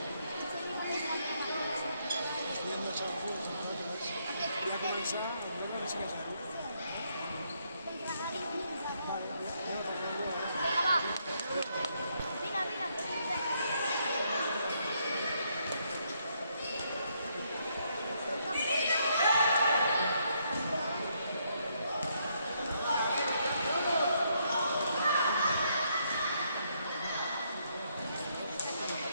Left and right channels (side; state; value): both; inverted; correlation -0.74